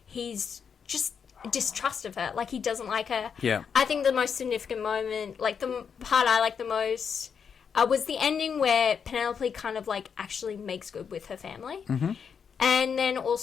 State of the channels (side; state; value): right; quieter; 6.8 dB